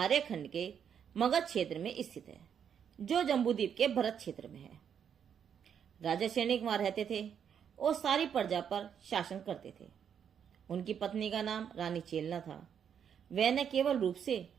के मगध क्षेत्र में स्थित है, जो जम्बूद्वीप के भरत क्षेत्र में है। राजा सैनिक वहां रहते थे और सारी प्रजा पर शासन करते थे। उनकी पत्नी का नाम रानी चेलना था। वह न केवल रूप से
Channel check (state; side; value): quieter; left; 8.1 dB